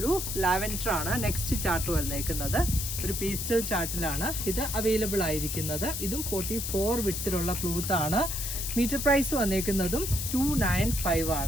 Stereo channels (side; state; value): left; noise; hiss, 4 dB below the sound